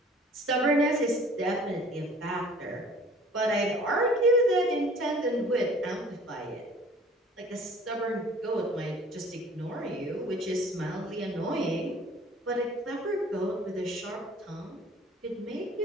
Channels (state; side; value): normal; both; correlation 0.50